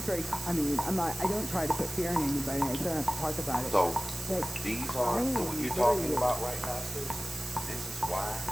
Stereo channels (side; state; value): right; noise; hiss, 9 dB below the sound